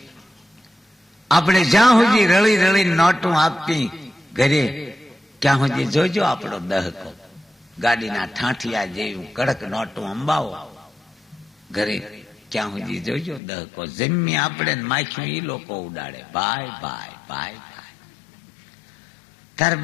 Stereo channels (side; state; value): right; drops out; at 13.4 s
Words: આપણે જ્યાં સુધી રળી રળી નોટું આપી ઘરે ત્યાં સુધી જોજો આપણો દહકો. ગાડીના ઠાઠિયા જેવું કડક નોટું અંબાવો ઘરે ત્યાં સુધી જોજો દહકો. જમી આપણે માખ્યું એ લોકો ઉડાડે. ભાઈ ભાઈ ભાઈ ભાઈ તાર